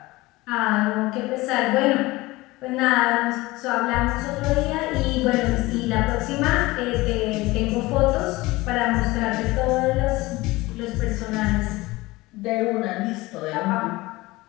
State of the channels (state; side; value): quieter; right; 20.5 dB